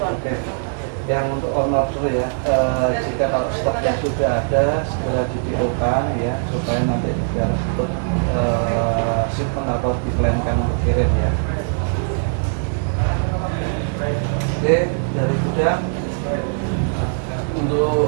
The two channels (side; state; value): left; silent; digital silence